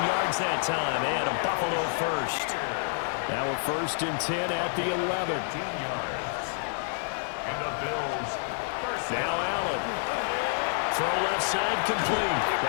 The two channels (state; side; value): silent; right; 59 dB below the other